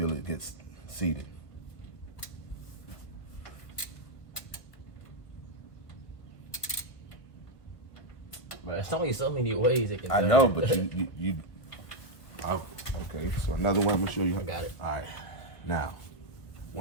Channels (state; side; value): late; right; 1.6 ms